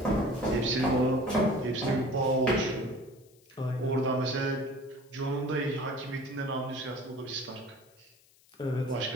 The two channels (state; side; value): noise; left; hiss, 30 dB below the sound